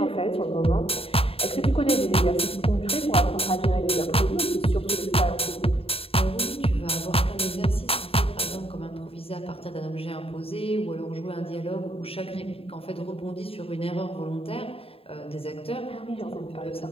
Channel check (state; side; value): late; right; 0.27 ms